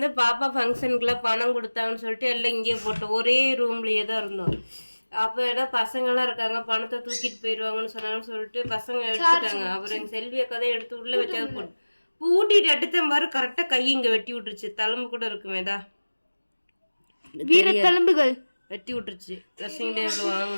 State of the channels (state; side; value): inverted; both; correlation -1.00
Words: பாப்பா ஃபங்க்ஷனுக்குள்ள பணம் கொடுத்தாங்கன்னு சொல்லிட்டு எல்லாம் இங்கே போட்டோம். ஒரே ரூம்லயே தான் இருந்தோம். அப்ப ஏதோ பசங்க எல்லாம் இருக்காங்க, பணத்தை தூக்கிட்டு போயிடுவாங்கன்னு சொன்னாங்கன்னு சொல்லிட்டு பசங்க எடுத்துட்டாங்க. அப்புறம் எங்க செல்விய கதை எடுத்து உள்ள வச்சது போட்டு பூட்டிட்டு எடுத்த மாதிரி கரெக்டா கை இங்க வெட்டி விட்டுருச்சு. தழும்பு கூட இருக்குமேதா, வீர தழும்புகள் வெட்டி விட்டுருச்சு. ட்ரெஸ்ஸிங் டேபிள்